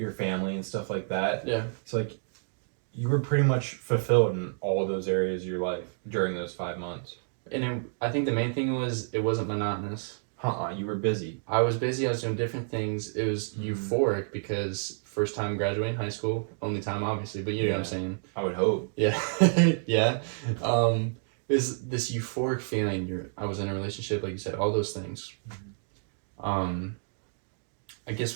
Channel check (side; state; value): left; silent; digital silence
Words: family and stuff like that. Yeah. So like you were pretty much fulfilled in all those areas of your life during those 5 months. And I think the main thing was it wasn't monotonous. You were busy. I was busy. I was doing different things. It was euphoric because first time graduating high school, only time obviously, but you know what I'm saying. I would hope. Yeah. Yeah. Is this euphoric feeling. I was in a relationship, like you said, all those things. I guess